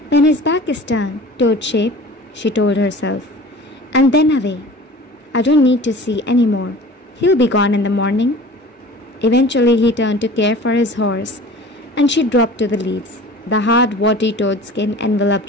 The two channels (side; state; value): both; normal; correlation 0.42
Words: When his back is turned, toad shape, she told herself, and then away. I don't need to see any more. He'll be gone in the morning. Eventually he turned to care for his horse, and she dropped to the leaves. The hard, warty toad skin